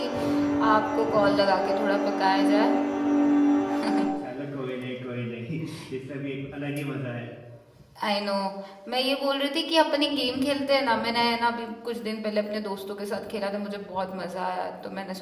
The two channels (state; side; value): identical; both; correlation 1.00